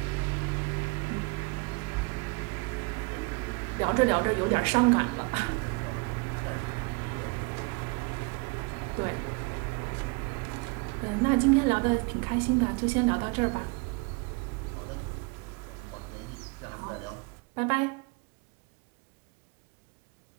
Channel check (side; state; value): left; quieter; 28.6 dB